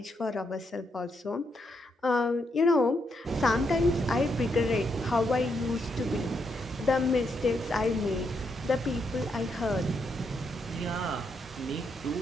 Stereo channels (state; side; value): normal; both; correlation 0.79